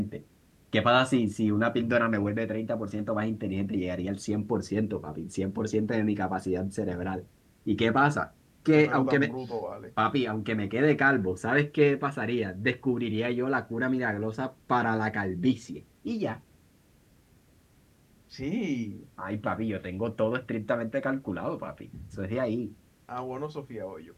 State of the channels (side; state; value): both; identical; correlation 1.00